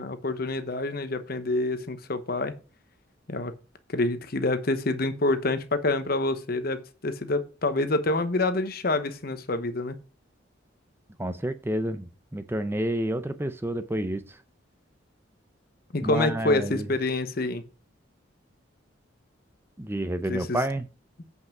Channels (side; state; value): both; normal; correlation 0.33